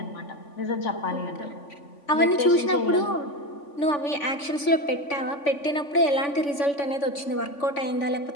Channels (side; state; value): right; late; 3.5 ms